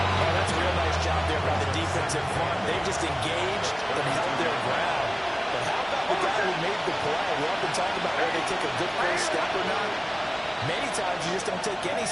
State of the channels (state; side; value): identical; both; correlation 1.00